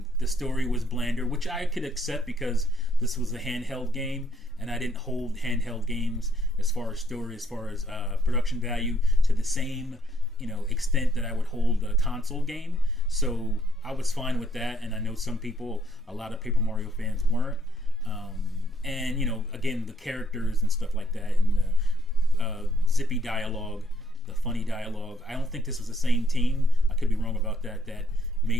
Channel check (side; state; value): both; normal; correlation 0.69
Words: the story was blander, which I could accept because this was a handheld game, and I didn't hold handheld games as far as story, as far as production value, to the same extent that I would hold a console game. So I was fine with that, and I know some people, a lot of Paper Mario fans, weren't. And again, the characters and stuff like that, and the zippy dialogue, the funny dialogue. I don't think this was the same team. I could be wrong about that. That